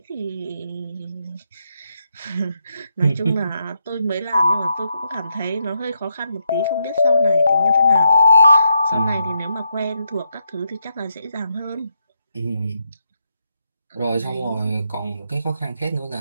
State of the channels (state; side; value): inverted; both; correlation -0.81